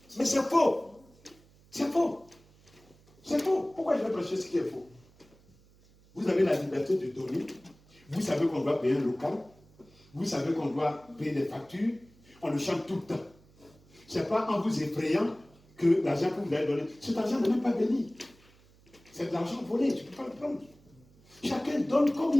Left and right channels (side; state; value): right; noise; hum, 28 dB below the sound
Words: Mais c'est faux. C'est faux. C'est faux. Pourquoi je vais prêcher ce qui est faux? Vous avez la liberté de donner. Vous savez qu'on doit payer un local. Vous savez qu'on doit payer des factures. On le chante tout le temps. Ce n'est pas en vous effrayant que l'argent que vous allez donner, cet argent n'est même pas béni. C'est de l'argent volé, tu ne peux pas le prendre. Chacun donne comme